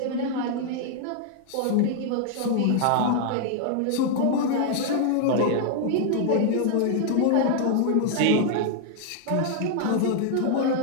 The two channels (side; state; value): both; different; correlation 0.00